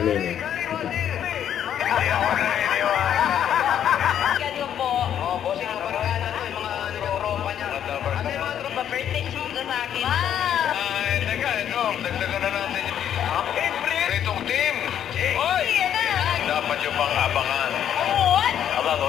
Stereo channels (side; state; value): right; quieter; 9.8 dB